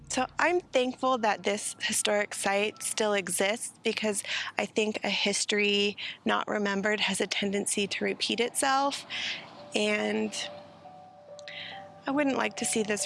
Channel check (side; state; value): both; identical; correlation 1.00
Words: So I'm thankful that this historic site still exists, because I think a history not remembered has a tendency to repeat itself, and I wouldn't like to see